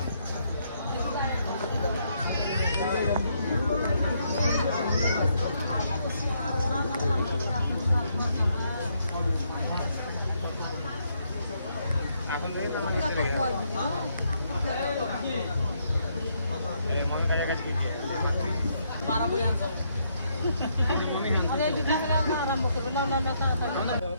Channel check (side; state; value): both; inverted; correlation -0.74